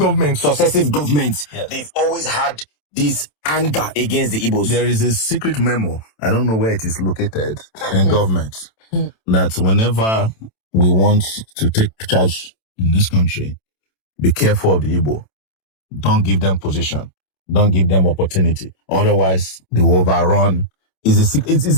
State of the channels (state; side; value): late; right; 27 ms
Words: governments, yes, they've always had this anger against the Igbos? There is a secret memo, I don't know where it is located, in government, that whenever we want to take charge in this country, be careful of the Igbo. Don't give them position. Don't give them opportunity. Otherwise, they will overrun. It is